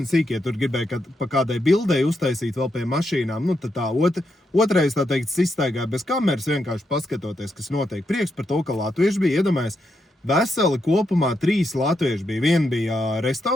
tur gribēja pa kādai bildei uztaisīt vēl pie mašīnām. Nu, tad tā otrais, tā teikt, izstaigāja bez kameras, vienkārši paskatoties, kas notiek. Prieks par to, ka latvieši bija, iedomājies, veseli kopumā 3 latvieši bija. Viena bija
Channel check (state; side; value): normal; both; correlation 0.82